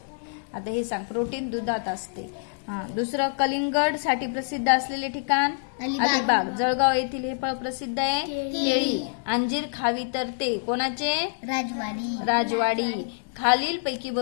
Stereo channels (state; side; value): silent; right; digital silence